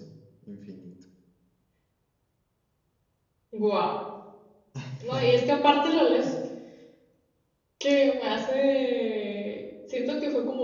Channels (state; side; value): identical; both; correlation 1.00